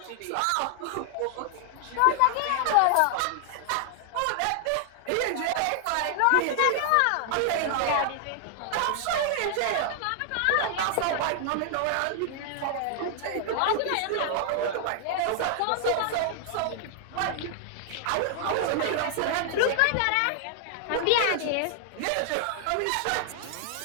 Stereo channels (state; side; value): different; both; correlation 0.00